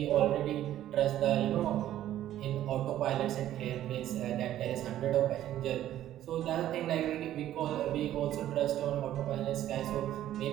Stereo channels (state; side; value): quieter; left; 12.6 dB